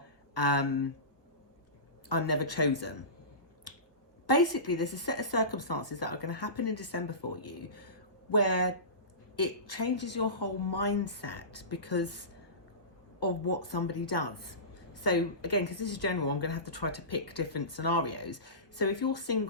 I'm never chosen. Basically, there's a set of circumstances that are going to happen in December for you where it changes your whole mindset because of what somebody does. So again, because this is general, I'm going to have to try to pick different scenarios. So if you're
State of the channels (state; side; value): late; right; 1.4 ms